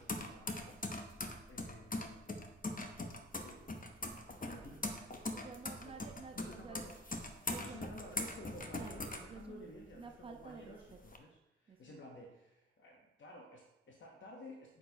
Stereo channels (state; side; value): normal; both; correlation 0.40